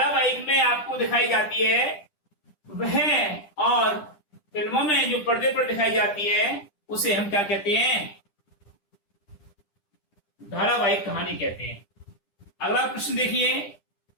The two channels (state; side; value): late; right; 10 ms